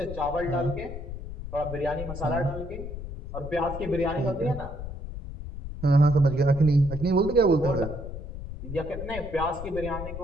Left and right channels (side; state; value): left; noise; rumble, 9 dB below the sound